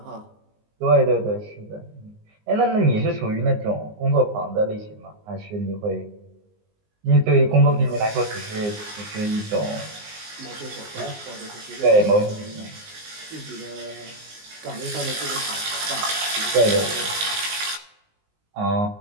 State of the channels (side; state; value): left; late; 19 ms